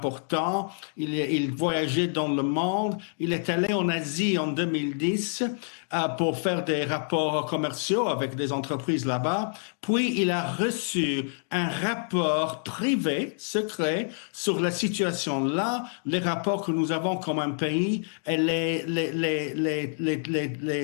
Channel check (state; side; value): silent; right; digital silence